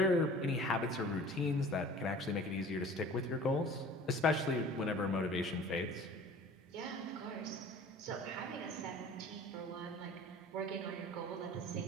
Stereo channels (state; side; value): normal; both; correlation 0.45